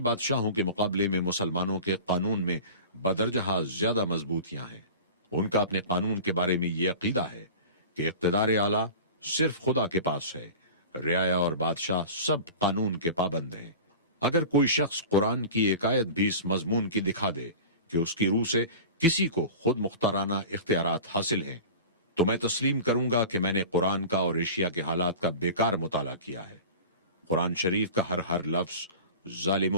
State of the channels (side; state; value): both; inverted; correlation -0.35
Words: کے مقابلے میں مسلمانوں کے قانون میں بدرجہ زیادہ مضبوطیاں ہیں۔ ان کا اپنے قانون کے بارے میں یہ عقیدہ ہے کہ اقتدار اعلیٰ صرف خدا کے پاس ہے، رعایا اور بادشاہ سب قانون کے پابند ہیں۔ اگر کوئی شخص قرآن کی ایک آیت بھی اس مضمون کی دکھا دے کہ اس کی روح سے کسی کو خود مختارانہ اختیارات حاصل ہیں، تو میں تسلیم کروں گا کہ میں نے قرآن کا اور ایشیا کے حالات کا بیکار مطالعہ کیا ہے۔ قرآن شریف کا ہر لفظ